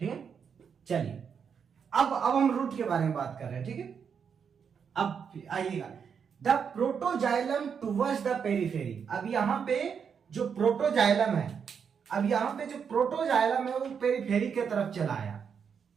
है, चलिए अब हम रूट के बारे में बात कर रहे हैं। ठीक है, अब आइएगा, the protoxylem towards the periphery. अब यहां पे जो प्रोटोजाइलम है, अब यहां पे जो प्रोटोजाइलम है वो पेरिफेरी की तरफ चला आया।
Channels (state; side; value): quieter; left; 6.8 dB